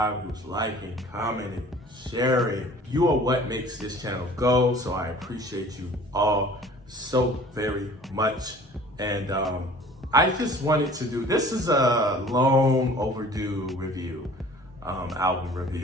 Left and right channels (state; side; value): normal; both; correlation 0.48